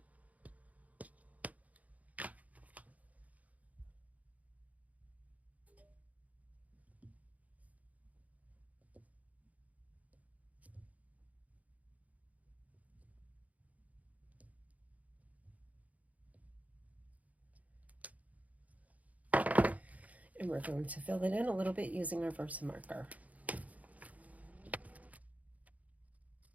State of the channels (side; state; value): left; late; 0.072 ms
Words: And we're going to fill it in a little bit using our Versa marker.